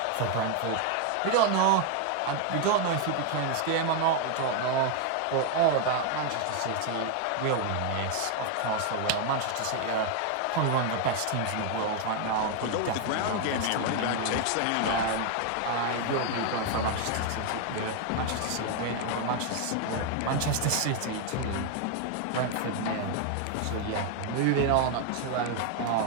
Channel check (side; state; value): both; different; correlation 0.01